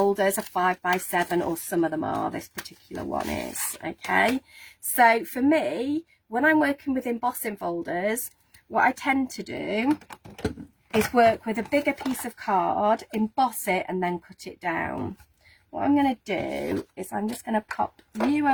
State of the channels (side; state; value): both; identical; correlation 1.00